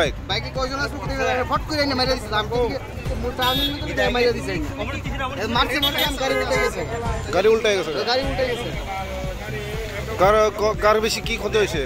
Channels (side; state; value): both; identical; correlation 1.00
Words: বাইকে কয়জন আসলো ফট করে আইনা মাইরা দিছে আমি টার্নিং মতো মাইরা দিছে মারছে মনে আমি গাড়ি উল্টে গেছে গাড়ি উল্টে গেছে কার বেশি কি ক্ষতি হয়েছে